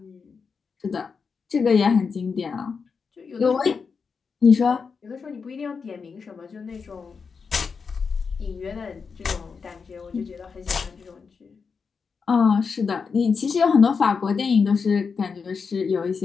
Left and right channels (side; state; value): right; quieter; 5.4 dB